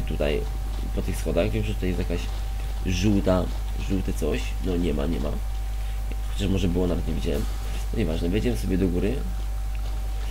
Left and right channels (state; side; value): identical; both; correlation 1.00